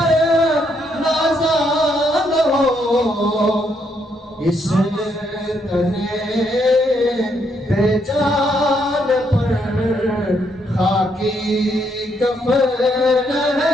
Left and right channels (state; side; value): normal; both; correlation 0.74